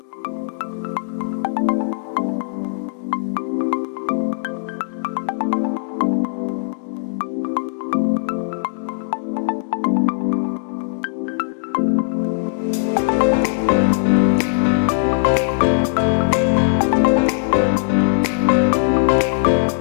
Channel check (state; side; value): silent; right; digital silence